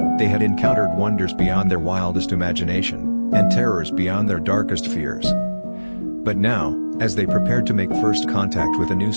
They had encountered wonders beyond their wildest imagination, and terrors beyond their darkest fears. But now, as they prepared to make first contact with a new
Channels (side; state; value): both; inverted; correlation -1.00